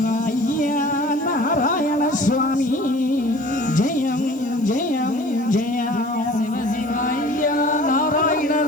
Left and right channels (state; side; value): noise; right; hiss, 26 dB below the sound